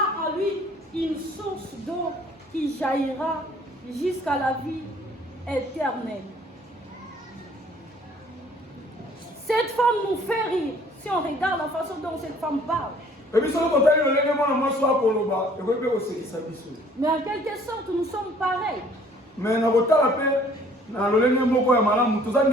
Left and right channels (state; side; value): normal; both; correlation 0.57